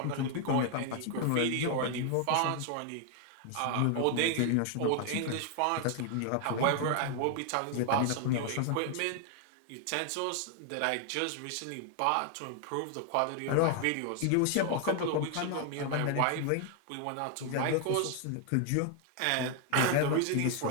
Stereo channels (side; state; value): both; different; correlation 0.00